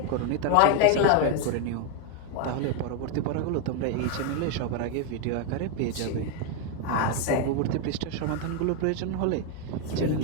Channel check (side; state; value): both; different; correlation 0.01